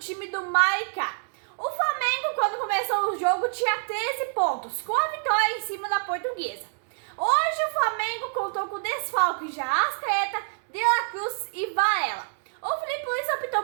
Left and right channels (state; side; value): silent; left; digital silence